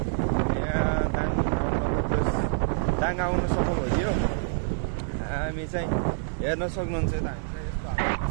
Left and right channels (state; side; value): silent; left; digital silence